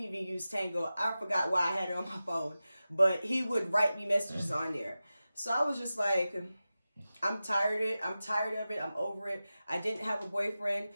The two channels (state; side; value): inverted; both; correlation -0.94